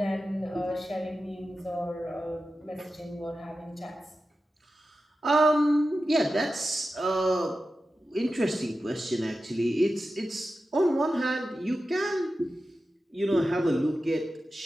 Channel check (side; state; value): both; normal; correlation 0.92